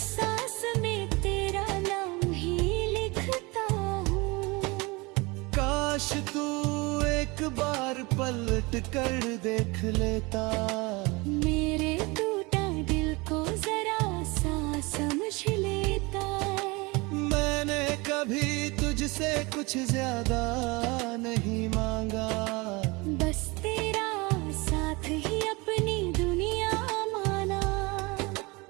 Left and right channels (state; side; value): quieter; left; 25.4 dB